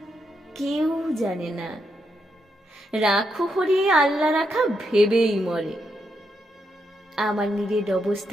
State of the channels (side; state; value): both; normal; correlation 0.80